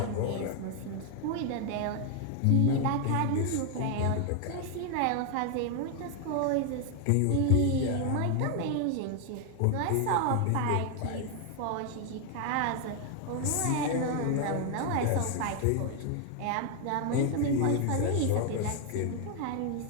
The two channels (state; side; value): different; both; correlation 0.00